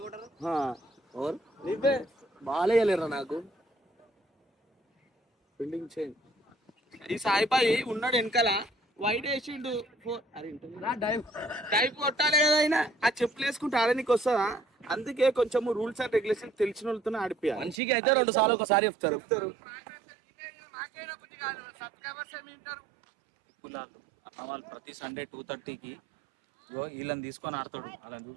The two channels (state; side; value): drops out; left; at 17.8 s